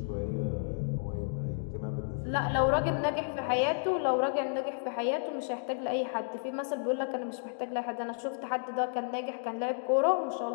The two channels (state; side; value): silent; right; digital silence